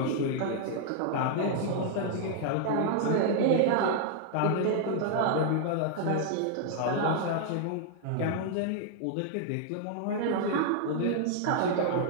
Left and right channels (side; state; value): both; different; correlation -0.01